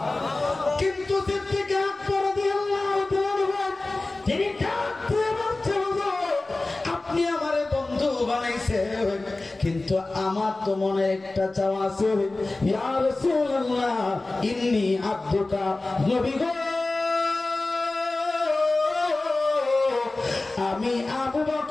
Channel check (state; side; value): quieter; right; 3.1 dB